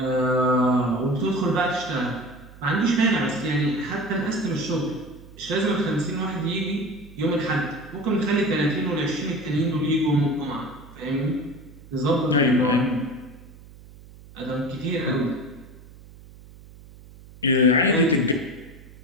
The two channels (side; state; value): right; noise; hum, 20 dB below the sound